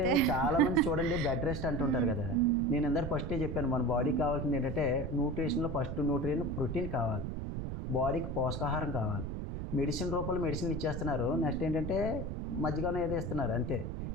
చాలా మంది చూడండి బెడ్ రెస్ట్ అంటుంటారు కదా. నేను అందరు ఫస్టే చెప్పాను, మన బాడీకి కావాల్సింది ఏంటంటే న్యూట్రిషన్లో ఫస్ట్ న్యూట్రియన్ ప్రోటీన్ కావాలి, బాడీకి పోషకాహారం కావాలి. మెడిసిన్ రూపంలో మెడిసిన్లు ఇచ్చేస్తున్నారు. నెక్స్ట్ ఏంటంటే మధ్యగానే ఏదో ఇస్తున్నారు అంతే.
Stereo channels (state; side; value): noise; right; rumble, 4 dB below the sound